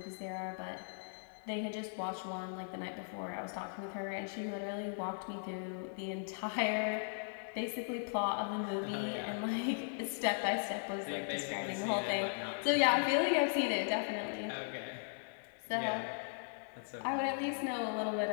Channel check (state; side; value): silent; right; digital silence